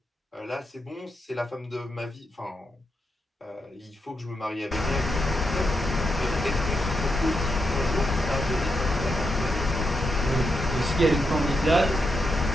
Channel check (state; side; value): normal; both; correlation 0.84